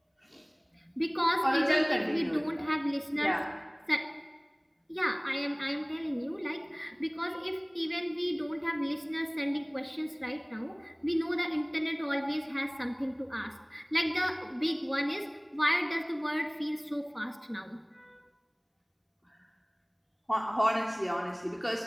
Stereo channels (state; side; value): identical; both; correlation 1.00